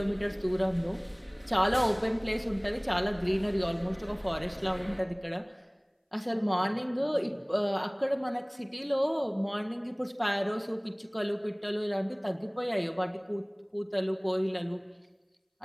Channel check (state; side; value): identical; both; correlation 1.00